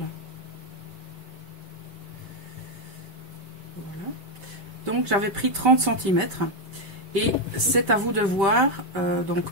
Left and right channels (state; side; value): late; left; 5.1 ms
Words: Voilà. Donc j'avais pris 30 cm et c'est à vous de voir donc